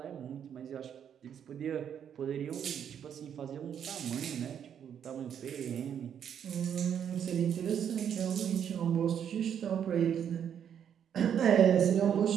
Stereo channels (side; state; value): left; quieter; 8.7 dB